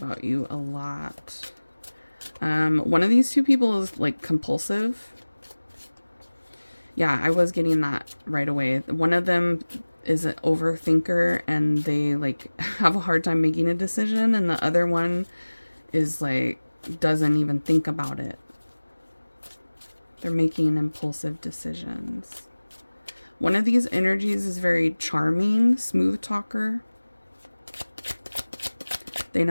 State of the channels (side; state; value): both; inverted; correlation -1.00